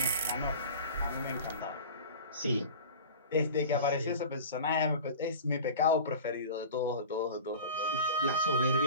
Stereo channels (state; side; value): inverted; both; correlation -0.37